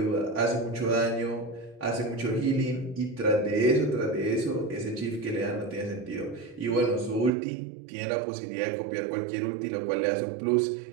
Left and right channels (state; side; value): drops out; left; at 7.3 s